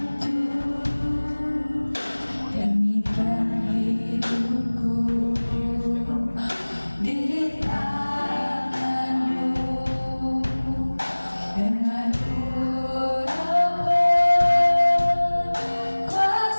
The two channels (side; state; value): both; inverted; correlation -1.00